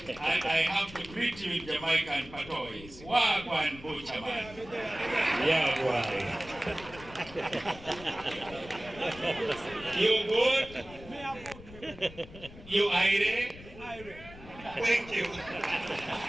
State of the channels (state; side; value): noise; left; rumble, 17 dB below the sound